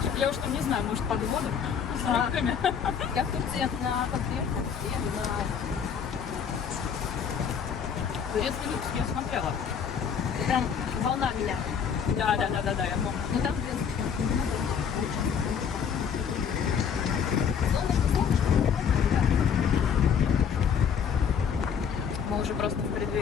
Я уж там не знаю, может, под водой, с рыбками. Я в Турции на подверху, еду на... Турецкий люкс я смотрела. Прям волна меня. Да, я помню. Но там Мы уже просто в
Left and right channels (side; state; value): right; quieter; 7.3 dB